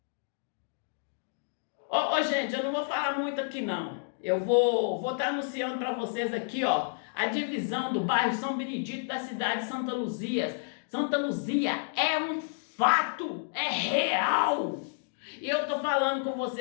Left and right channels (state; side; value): silent; right; digital silence